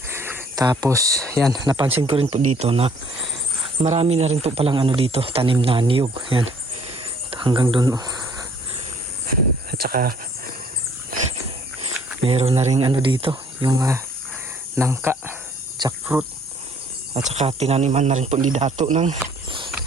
Tapos yan, napansin ko rin po dito na marami na rin po palang ano dito, tanim na niyog. Yan. Hanggang doon. At saka meron na rin ano dito, yung nangka, jackfruit. At saka tinaniman na rin po ni Dato ng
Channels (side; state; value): both; normal; correlation 0.59